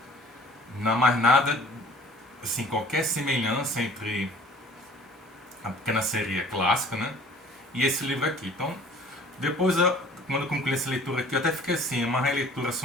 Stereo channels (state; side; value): normal; both; correlation 0.49